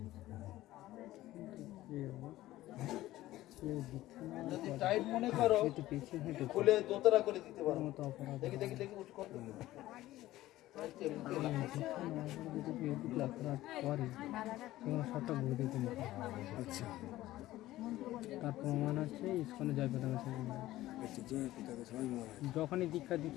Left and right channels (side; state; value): right; quieter; 15.8 dB